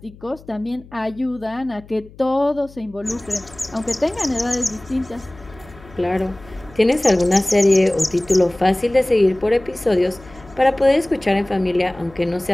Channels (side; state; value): left; noise; hum, 22 dB below the sound